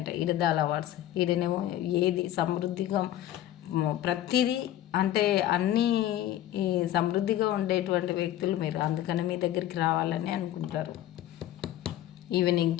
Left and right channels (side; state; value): right; quieter; 13.0 dB